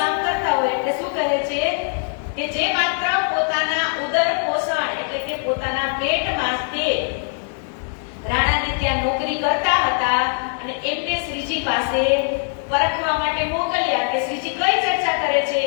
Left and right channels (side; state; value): right; silent; 62 dB below the other